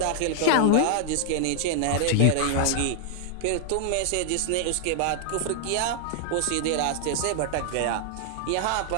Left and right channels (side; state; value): both; different; correlation 0.00